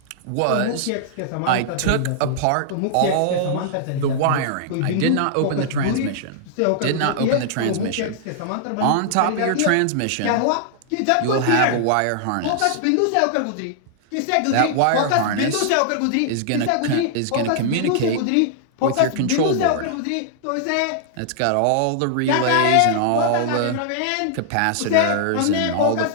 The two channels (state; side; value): different; both; correlation -0.01